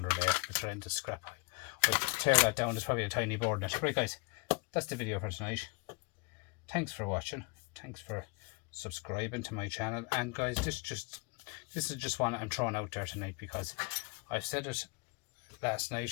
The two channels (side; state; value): right; quieter; 30.6 dB